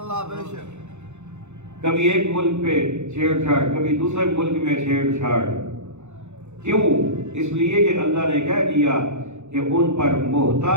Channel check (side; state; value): left; late; 0.83 ms